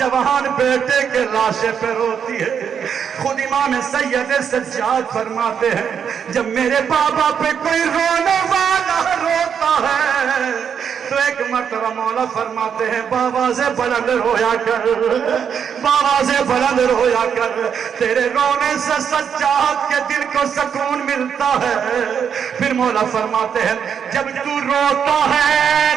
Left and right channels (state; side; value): quieter; left; 7.6 dB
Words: بیٹے کے لاشے پہ روتی ہے۔ خود امام سید سجاد فرماتے ہیں جب میرے بابا پہ کوئی رونے والا روتا ہے تو ایک مرتبہ مولا فرماتے ہیں بابا سے بلند رویا کر، بابا سے بلند رویا کر، تیرے رونے سے سجاد کے دل کو سکون ملتا ہے۔ پھر مولا فرماتے ہیں جب تو روتا ہے